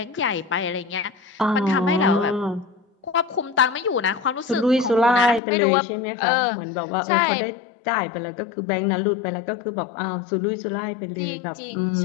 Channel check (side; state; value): right; drops out; at 5.4 s